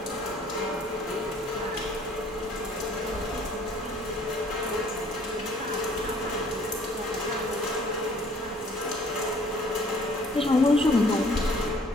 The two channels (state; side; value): normal; both; correlation 0.58